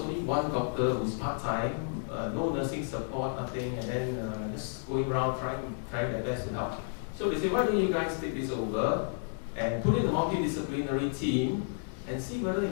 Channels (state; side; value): silent; right; digital silence